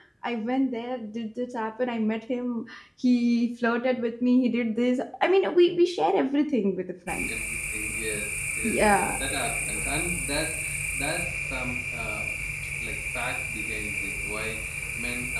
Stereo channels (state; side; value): identical; both; correlation 1.00